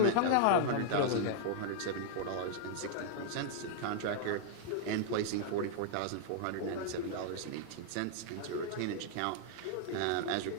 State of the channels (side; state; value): both; different; correlation -0.01